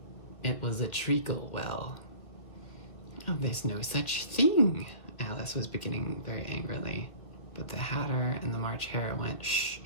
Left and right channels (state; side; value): late; right; 1.9 ms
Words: It was a treacle well. Oh, there's no such thing, Alice was beginning very angrily, but the Hatter and the March Hare went, shh,